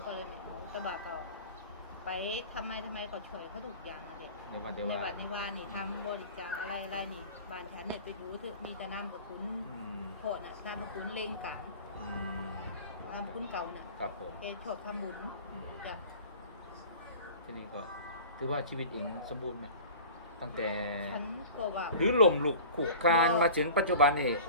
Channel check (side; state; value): both; inverted; correlation -0.40